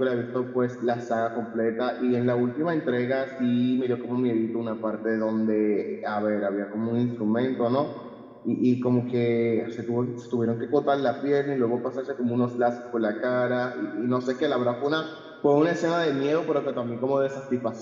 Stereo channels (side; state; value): both; identical; correlation 1.00